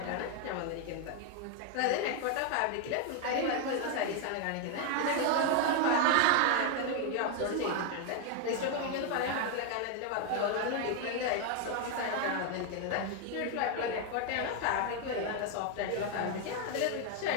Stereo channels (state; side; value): different; both; correlation 0.01